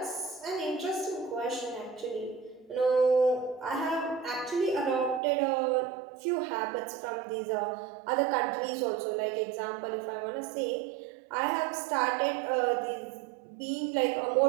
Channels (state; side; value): drops out; left; at 5.2 s